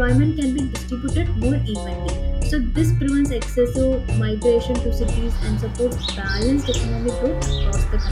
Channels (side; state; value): both; identical; correlation 1.00